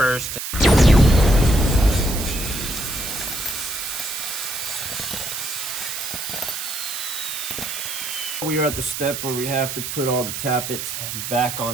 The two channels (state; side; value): noise; right; hiss, 5 dB below the sound